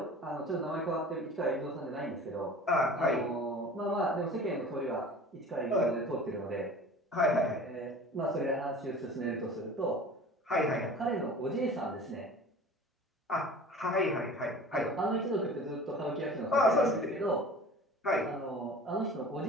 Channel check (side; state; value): both; normal; correlation 0.42